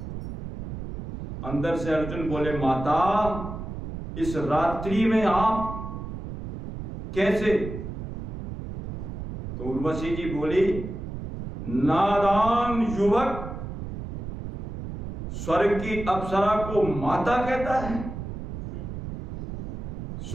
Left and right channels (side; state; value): right; noise; rumble, 7 dB below the sound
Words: अंदर से अर्जुन बोले माता इस रात्रि में आप कैसे? तो उर्वशी जी बोली नादान युवक स्वर्ग की अप्सरा को माता कहता है?